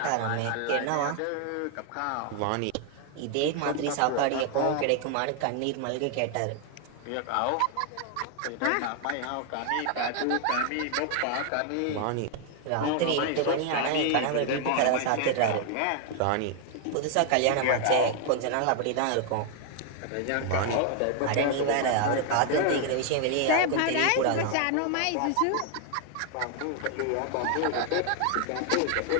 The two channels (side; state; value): both; different; correlation 0.00